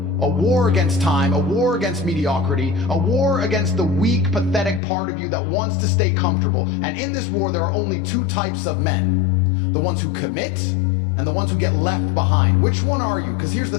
A war against time, a war against mediocrity, a war against the weak, pathetic part of you that wants to stay comfortable. And in this war, there are only two types of men. The ones who commit and the ones who get left behind. Which one are you? Because here's the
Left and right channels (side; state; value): right; drops out; at 4.8 s